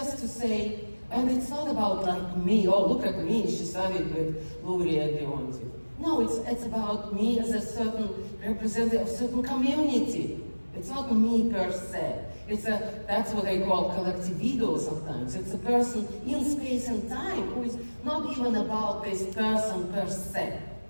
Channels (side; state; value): both; inverted; correlation -1.00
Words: to say, and it's not about like me, oh, look at me, she studied with Luria and Leontiev. No, it's about me as a certain representative of a certain community. It's not me per se. That's what I call collective ego sometimes. It's a person in space and time who is not even about this person per se,